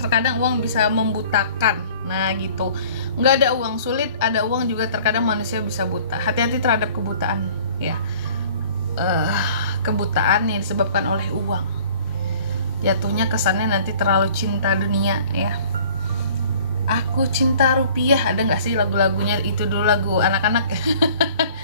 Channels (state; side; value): inverted; both; correlation -0.51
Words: terkadang uang bisa membutakan. Nah gitu, nggak ada uang sulit, ada uang juga terkadang manusia bisa buta. Hati-hati terhadap kebutaan ya, kebutaan yang disebabkan oleh uang. Jatuhnya kesannya nanti terlalu cinta dunia ya. Aku cinta rupiah, ada nggak sih lagu-lagunya itu dulu, lagu anak-anak.